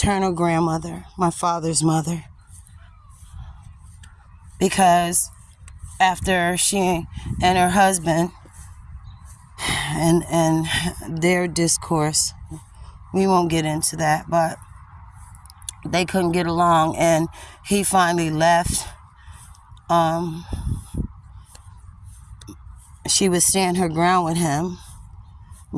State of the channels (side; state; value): both; identical; correlation 1.00